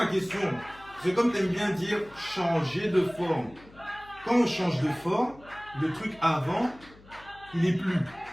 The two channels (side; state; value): left; noise; hum, 23 dB below the sound